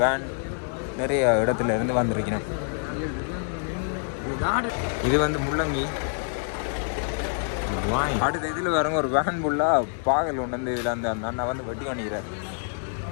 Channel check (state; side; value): silent; right; 58 dB below the other